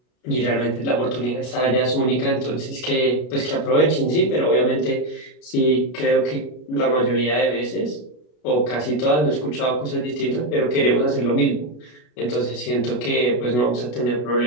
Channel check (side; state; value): right; late; 33 ms